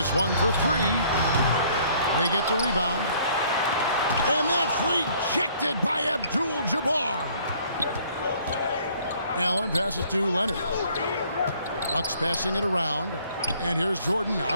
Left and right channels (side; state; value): both; inverted; correlation -0.59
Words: one for 3. They get the rebound. And that's rejected by Abdul-Jabbar. Allen passes to Leonard. Bucks passing it around. And here's Jordan